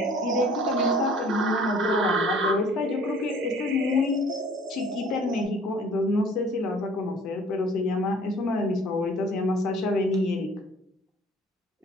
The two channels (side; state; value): both; normal; correlation 0.51